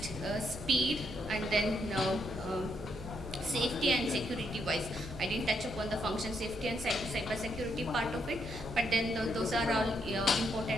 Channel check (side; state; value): right; noise; hum, 13 dB below the sound